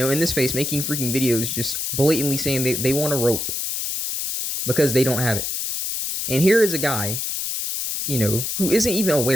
this space making freaking videos just blatantly saying they want a rope because they don't have it. And here is a guy, who isn't even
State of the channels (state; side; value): noise; left; hiss, 3 dB below the sound